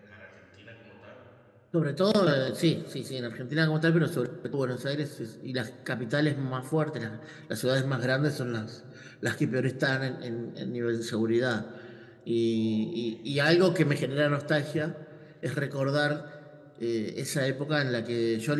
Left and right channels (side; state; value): both; identical; correlation 1.00